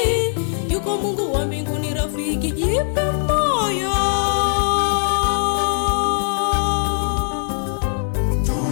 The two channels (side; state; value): right; silent; 65 dB below the other